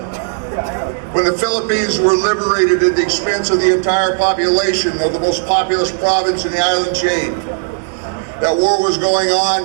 when the Philippines were liberated at the expense of the entire population of the most populous province in the island chain. That war was going on,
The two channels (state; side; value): silent; left; digital silence